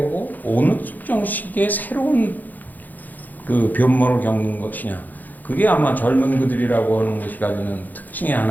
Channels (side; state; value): right; late; 0.084 ms